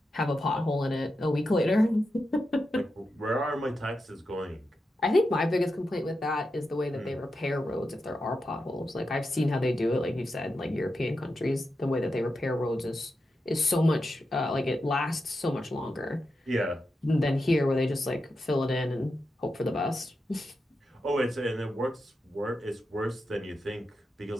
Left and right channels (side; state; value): both; normal; correlation 0.88